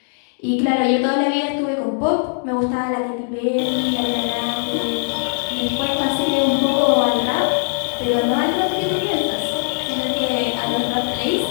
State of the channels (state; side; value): silent; right; digital silence